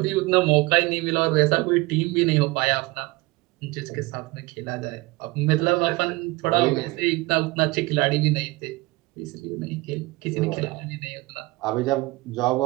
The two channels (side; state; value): left; quieter; 22.8 dB